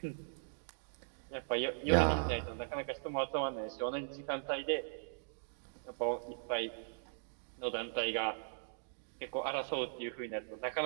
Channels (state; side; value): silent; left; digital silence